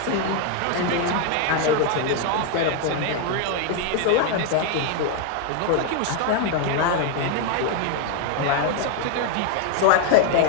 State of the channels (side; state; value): both; different; correlation 0.01